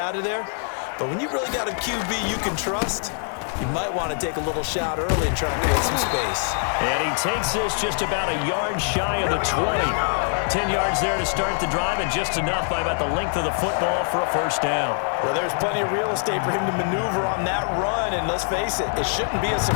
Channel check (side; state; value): right; silent; 58 dB below the other